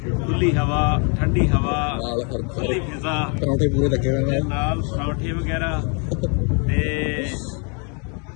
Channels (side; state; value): right; quieter; 36.6 dB